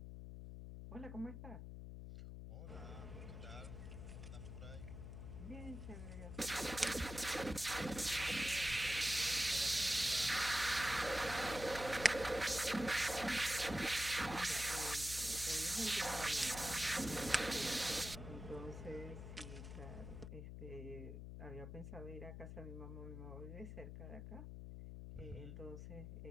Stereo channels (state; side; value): noise; left; hum, 9 dB below the sound